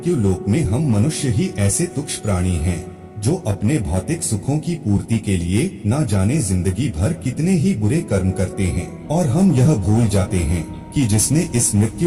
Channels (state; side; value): identical; both; correlation 1.00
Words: लोक में हम मनुष्य ही ऐसे तुच्छ प्राणी हैं जो अपने भौतिक सुखों की पूर्ति के लिए न जाने जिंदगी भर कितने ही बुरे कर्म करते हैं, और हम यह भूल जाते हैं कि जिसने इस